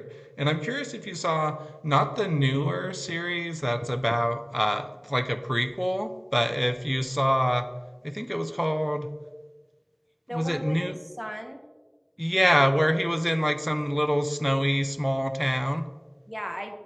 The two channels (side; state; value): both; identical; correlation 1.00